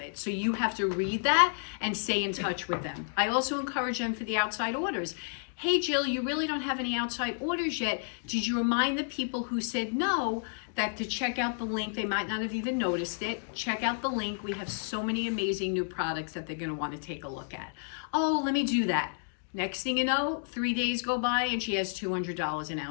So you have to read that and stay in touch with them. I also encourage them for the outside orders. Hey Jill, you really don't have any outside orders yet. Did you remind the people who said no that to check out the link? They might not have even noticed it. Check out the link. We have so many amazing new products that they're going to want to take a look at. Oh, let me do that. Next thing you know, 3 days go by and she has $200 in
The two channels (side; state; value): right; silent; digital silence